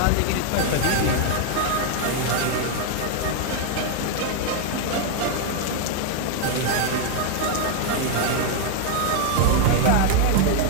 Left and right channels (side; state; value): both; different; correlation 0.00